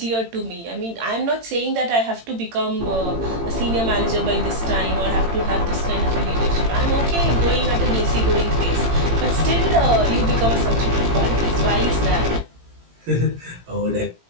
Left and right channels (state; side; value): late; left; 18 ms